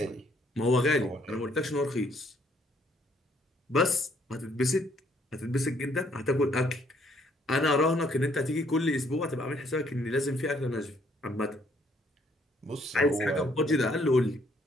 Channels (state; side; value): normal; both; correlation 0.67